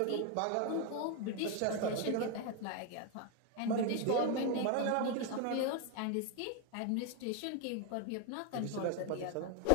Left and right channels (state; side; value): different; both; correlation 0.01